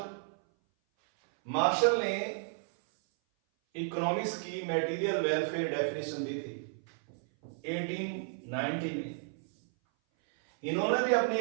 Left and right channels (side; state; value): left; silent; 56 dB below the other